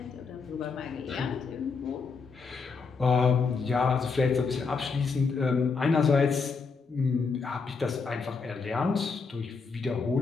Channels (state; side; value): quieter; right; 4.9 dB